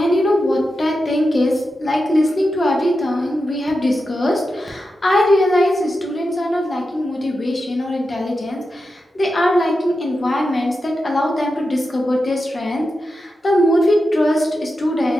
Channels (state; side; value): normal; both; correlation 0.90